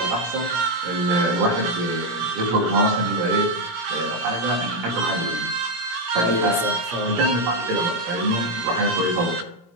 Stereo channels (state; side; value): late; left; 17 ms